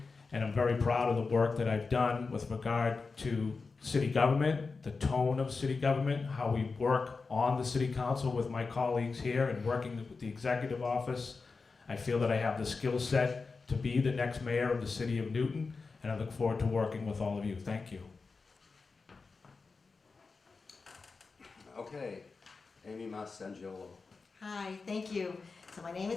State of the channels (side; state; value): right; quieter; 4.4 dB